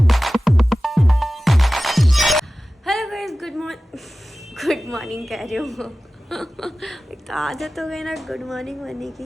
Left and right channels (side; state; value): both; normal; correlation 0.96